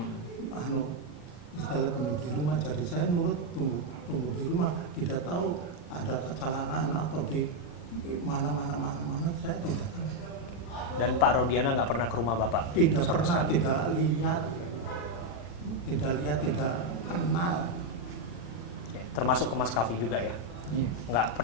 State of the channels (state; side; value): late; right; 40 ms